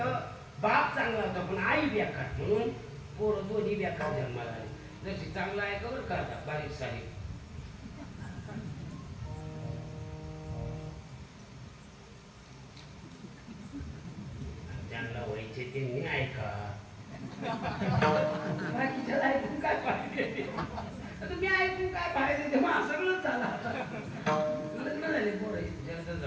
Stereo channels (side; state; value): both; identical; correlation 1.00